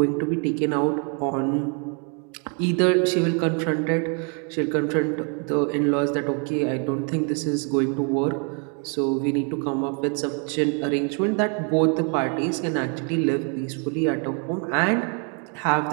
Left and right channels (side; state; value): left; quieter; 38.2 dB